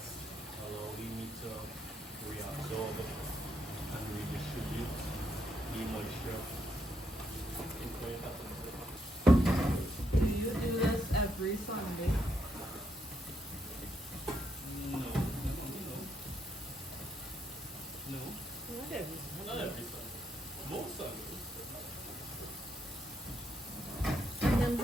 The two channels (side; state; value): both; normal; correlation 0.78